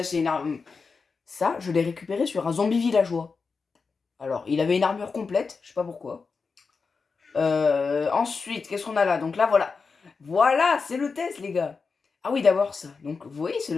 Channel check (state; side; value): quieter; right; 4.8 dB